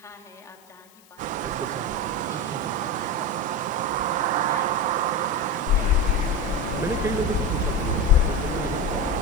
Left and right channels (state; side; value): noise; left; hiss, 28 dB below the sound